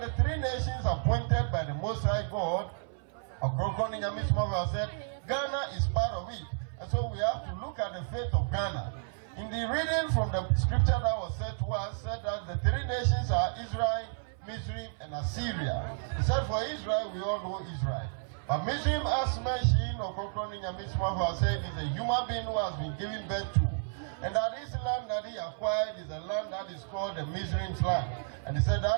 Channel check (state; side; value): silent; left; 56 dB below the other